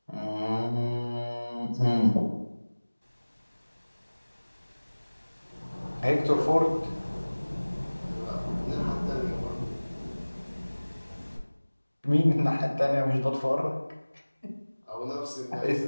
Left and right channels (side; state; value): both; inverted; correlation -1.00